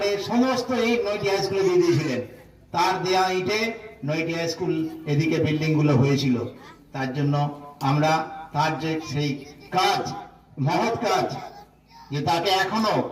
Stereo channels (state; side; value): identical; both; correlation 1.00